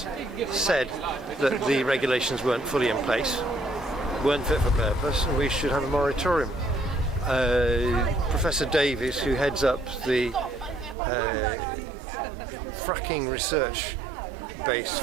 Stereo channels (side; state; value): left; drops out; at 11.0 s